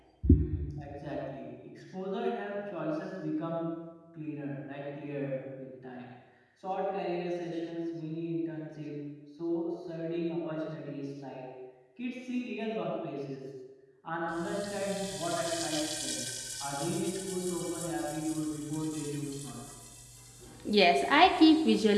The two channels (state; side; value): identical; both; correlation 1.00